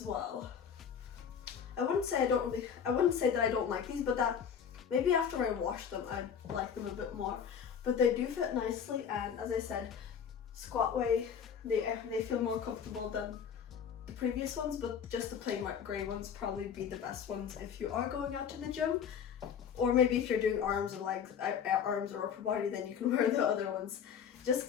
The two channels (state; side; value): quieter; right; 7.5 dB